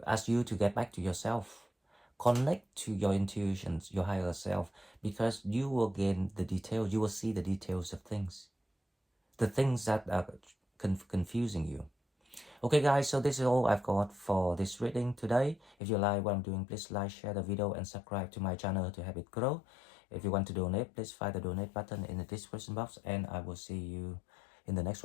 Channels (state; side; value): drops out; right; at 15.8 s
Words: ask you to get back to yourself, connect to your intuitions, your higher self, because you will gain the details. You will see the details of things, the things that are confusing you. Okay guys, so this is all I've got for this reading today. If you like what I'm doing, please like, share the video, and subscribe to my channel to help it grow. If you want to donate, please find the donate button in the description box, and I will see you in the next